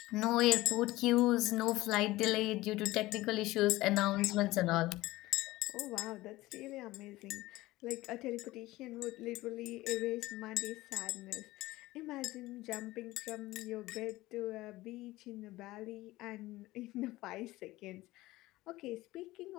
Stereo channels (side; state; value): right; quieter; 18.3 dB